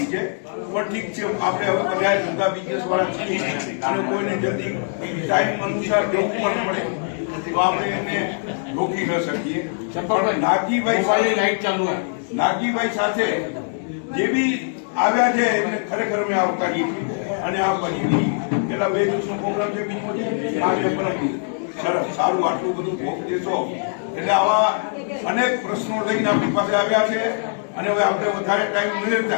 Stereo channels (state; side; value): silent; right; digital silence